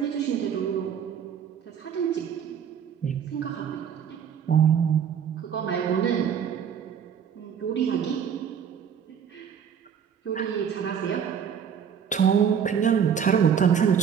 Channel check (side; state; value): left; quieter; 7.9 dB